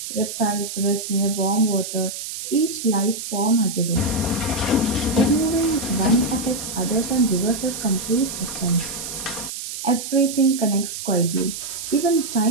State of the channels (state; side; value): noise; right; hiss, 7 dB below the sound